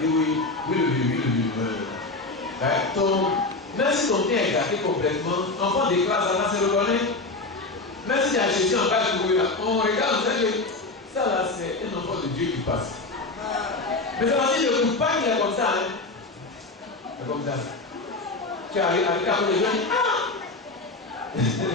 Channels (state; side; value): quieter; right; 3.3 dB